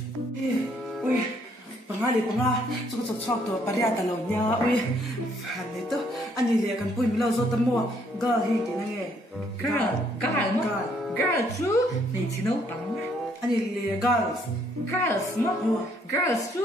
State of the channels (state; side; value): normal; both; correlation 0.68